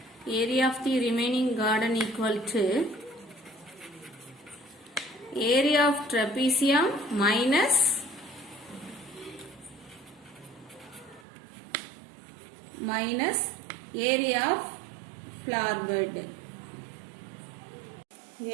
area of the remaining garden equal to area of trapezium minus area of flower bed.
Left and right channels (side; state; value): left; drops out; at 11.2 s